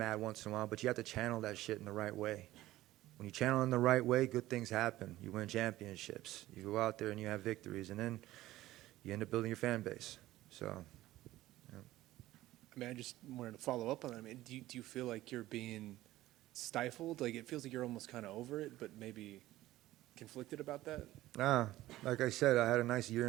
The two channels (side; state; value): left; quieter; 15.9 dB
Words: once in a while, but you have to channel that shit in the right way. When you channel in the right way, good things happen. You win championships. You go out there and you have victories, and then you end up building your fan base. So, yeah. I mean, I just wanted to follow up on that. I mean, do you feel like you're being stifled? Like, it feels like you're almost kind of over it, but maybe conflicted about that? Nah, like I said, I had a nice 1.5